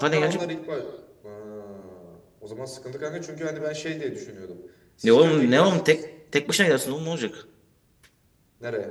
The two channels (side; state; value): both; identical; correlation 1.00